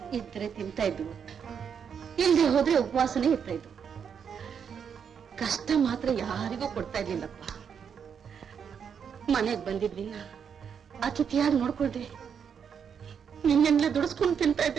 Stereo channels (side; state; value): left; quieter; 7.3 dB